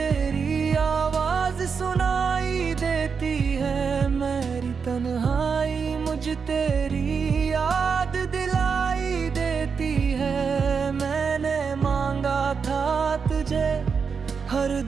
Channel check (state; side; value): quieter; left; 5.8 dB